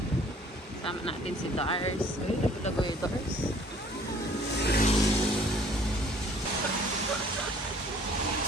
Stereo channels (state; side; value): normal; both; correlation 0.55